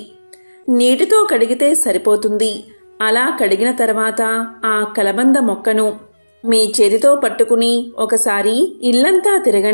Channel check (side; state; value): both; inverted; correlation -1.00